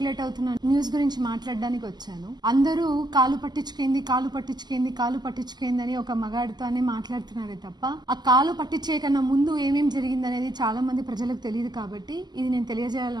అవుతున్న న్యూస్ గురించి మాట్లాడడానికి వచ్చాను. అందరూ కాలు పట్టించుకేంది అని ఒక మగాడితోనే మాట్లాడుతున్నారే తప్ప ఆ కాలు పట్టించే కన్నా ముందు ఏమేం జరిగింది అనేది చాలా మంది ప్రజలకు తెలియదు కాబట్టి ఇది నేను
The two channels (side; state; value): left; late; 0.20 ms